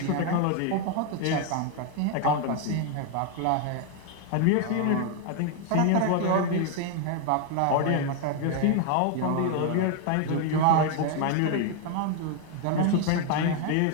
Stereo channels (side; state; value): both; different; correlation 0.01